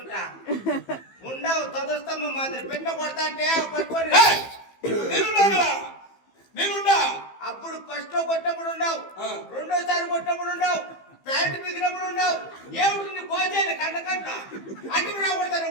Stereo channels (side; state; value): right; late; 15 ms